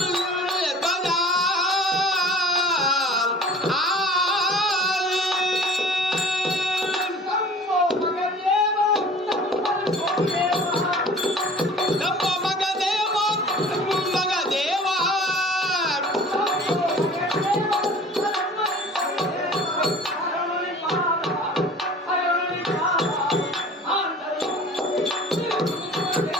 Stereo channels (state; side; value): normal; both; correlation 0.45